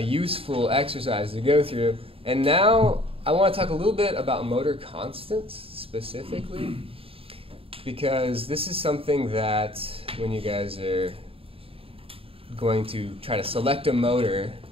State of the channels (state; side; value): late; left; 0.27 ms